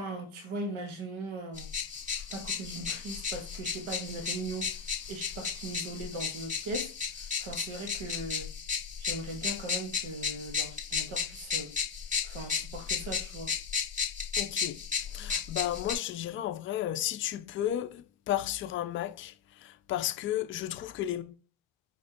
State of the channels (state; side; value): quieter; right; 5.8 dB